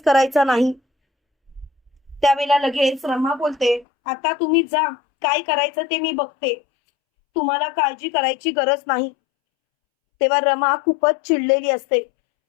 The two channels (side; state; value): right; drops out; at 3.9 s